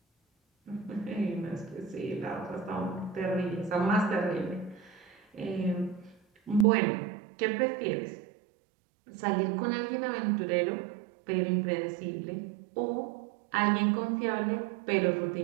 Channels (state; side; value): drops out; left; at 6.7 s